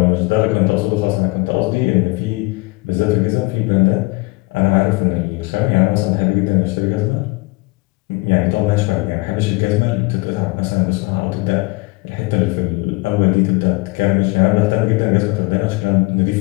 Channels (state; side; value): quieter; right; 25.0 dB